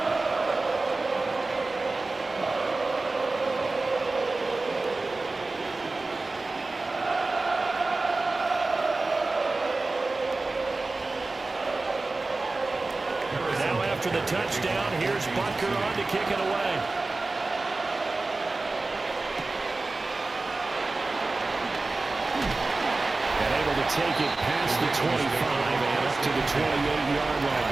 After the touchdown, here's Butker on to kick it away. And able to take it past the 25 and up to the 28-yard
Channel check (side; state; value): left; quieter; 3.4 dB